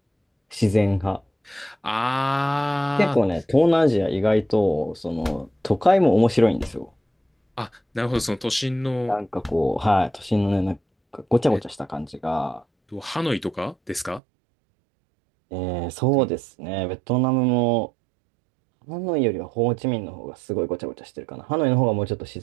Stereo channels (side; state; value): left; drops out; at 14.2 s